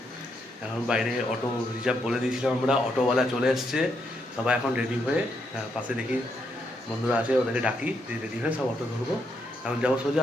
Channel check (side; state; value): both; normal; correlation 0.78